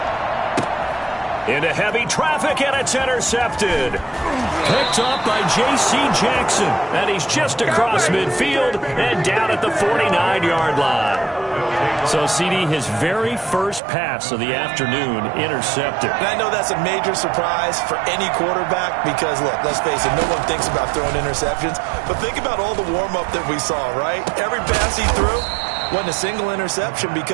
Into heavy traffic, and it's intercepted. Picked up by J.C. Jackson. And he's just across midfield and down at the 49-yard line. So, CD, his very first pass of the afternoon intercepted. And I know that's a major surprise for any quarterback because, look, let's face it, no one thinks about throwing interceptions. But think about all the warm-up that we saw, right? Every pass he threw wasn't a single interception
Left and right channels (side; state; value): left; drops out; at 13.8 s